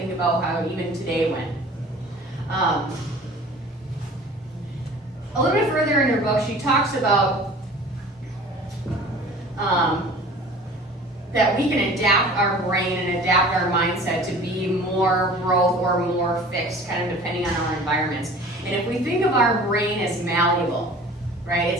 about how even today went. A little bit further in her book, she talks about that we can adapt our brain and adapt our mindset to be more growth or more fixed, kind of depending on our environments. And if we think of our brain as malleable, right,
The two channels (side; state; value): both; normal; correlation 0.44